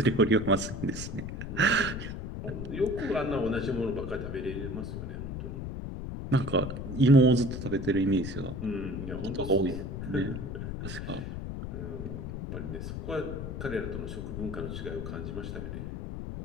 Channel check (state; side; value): noise; left; rumble, 6 dB below the sound